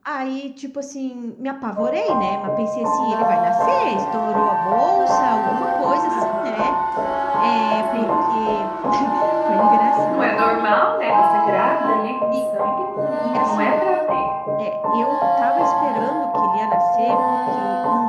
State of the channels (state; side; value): identical; both; correlation 1.00